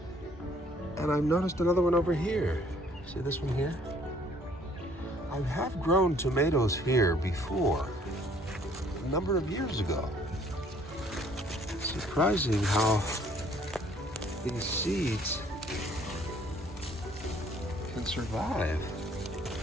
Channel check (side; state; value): both; normal; correlation 0.60